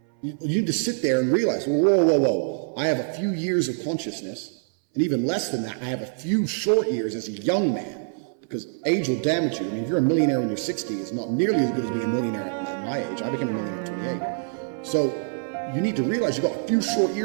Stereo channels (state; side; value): silent; left; 62 dB below the other